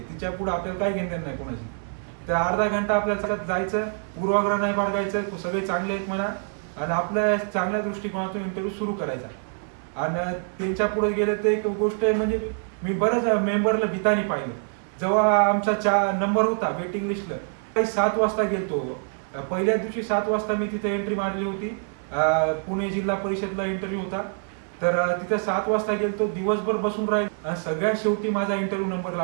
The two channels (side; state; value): left; silent; 57 dB below the other